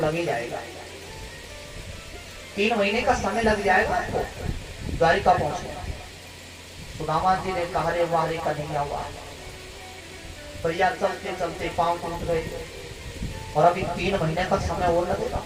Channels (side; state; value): both; identical; correlation 1.00